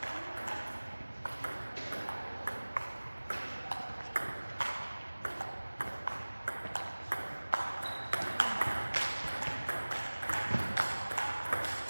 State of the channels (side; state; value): both; inverted; correlation -1.00